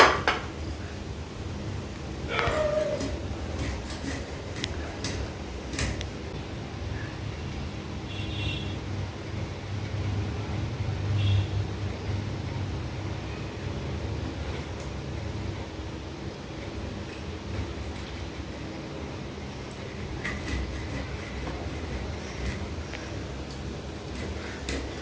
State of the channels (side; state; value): both; identical; correlation 1.00